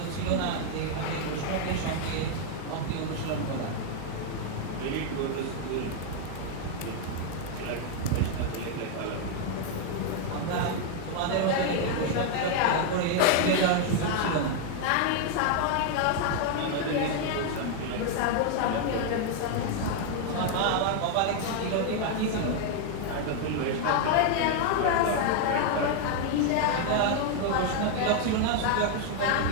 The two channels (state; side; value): different; both; correlation 0.00